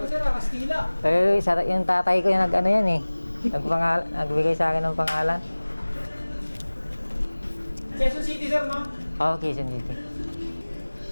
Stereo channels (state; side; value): inverted; both; correlation -1.00